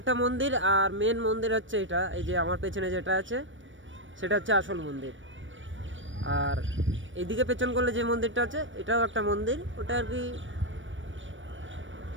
একটা মন্দির, আর মেন মন্দির হচ্ছে এটা, এই যে আমার পেছনে যেটা আছে সেটা হচ্ছে আসল মন্দির। আর এইদিকে পেছন করলে যে মন্দিরটা আছে এটাও একটা মন্দির, ওটা আর কি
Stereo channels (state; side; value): late; left; 0.56 ms